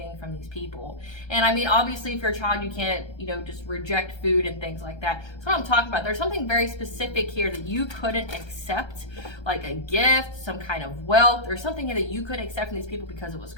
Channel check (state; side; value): late; right; 1.3 ms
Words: from these people. And I mean, obviously if you're a child, you can't, just reject food and things like that. That's what I'm talking about. There's something very specific here that you couldn't accept, like a gift, some kind of wealth, or something that you couldn't accept from these people because it was